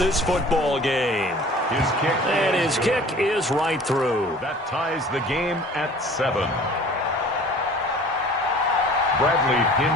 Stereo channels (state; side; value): normal; both; correlation 0.47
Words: football game. His kick is right through. That ties the game at 7. Bradley